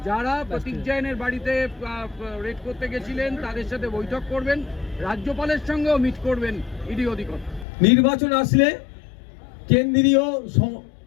যারা প্রতীক জৈনের বাড়িতে রেড করতে গেছিলেন তাদের সাথে বৈঠক করবেন, রাজ্যপালের সঙ্গেও মিট করবেন ইডি অধিকর্তা। নির্বাচন আসলে কেন্দ্রীয়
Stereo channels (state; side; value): drops out; right; at 7.7 s